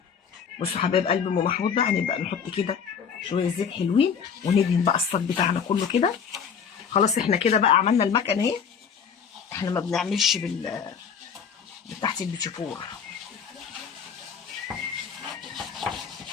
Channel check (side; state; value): right; quieter; 6.9 dB